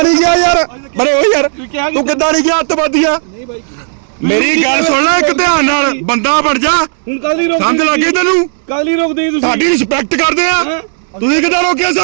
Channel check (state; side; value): silent; left; digital silence